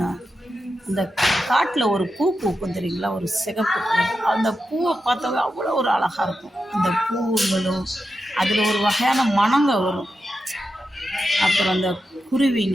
அந்த காட்டில் ஒரு பூ பூக்கும் தெரியுங்களா, ஒரு சிகப்பு கலர். அந்த பூவை பார்த்தாவே அவ்வளோ ஒரு அழகாக இருக்கும். அந்த பூங்களும் அதில் ஒரு வகையான மணங்க வரும். அப்புறம் அந்த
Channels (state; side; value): normal; both; correlation 0.89